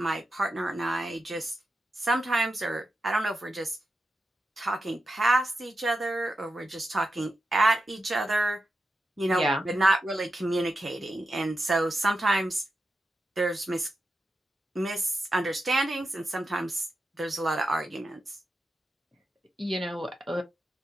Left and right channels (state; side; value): normal; both; correlation 0.89